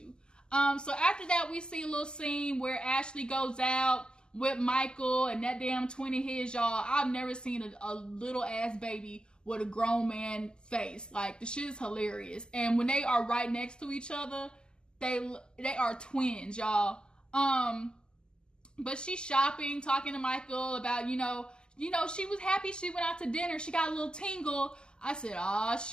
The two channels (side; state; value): right; late; 0.047 ms